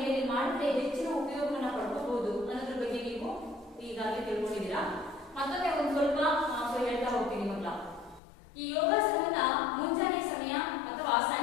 ಮಾಡಿದ್ರೆ ಹೆಚ್ಚಿನ ಉಪಯೋಗವನ್ನ ಪಡ್ಕೋಬಹುದು ಅನ್ನೋದ್ರ ಬಗ್ಗೆ ನೀವು ಈಗಾಗಲೇ ತಿಳ್ಕೊಂಡಿದ್ದೀರಾ. ಮತ್ತೊಮ್ಮೆ ಒಂದು ಸ್ವಲ್ಪ ಹೇಳ್ತಾ ಹೋಗ್ತೀನಿ ಮಕ್ಕಳ. ಈ ಯೋಗಾಸನವನ್ನ ಮುಂಜಾನೆ ಸಮಯ ಅಥವಾ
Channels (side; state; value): right; drops out; at 8.2 s